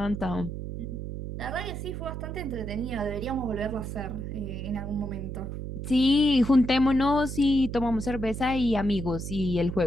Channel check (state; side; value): noise; right; hum, 6 dB below the sound